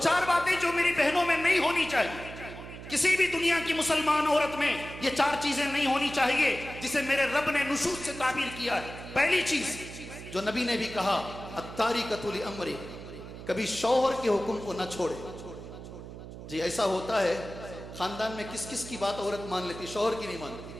बातें जो मेरी बहनों में नहीं होनी चाहिए, किसी भी दुनिया की मुसलमान औरत में ये 4 चीजें नहीं होनी चाहिए जिसे मेरे रब ने नुशूज़ से ताबीर किया है। पहली चीज जो नबी ने भी कहा, अत्तारिकतु लिअम्री, कभी शौहर के हुक्म को न छोड़े। जी ऐसा होता है खानदान में, किस किस की बात औरत मान लेती, शौहर की नहीं मानती,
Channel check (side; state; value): right; noise; hum, 12 dB below the sound